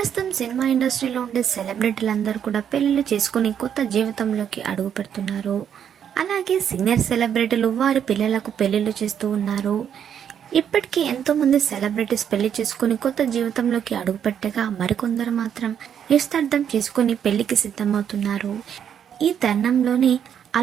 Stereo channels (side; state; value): left; quieter; 8.7 dB